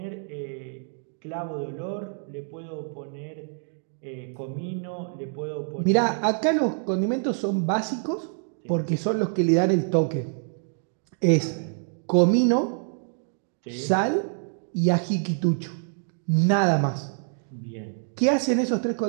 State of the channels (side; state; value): left; silent; 61 dB below the other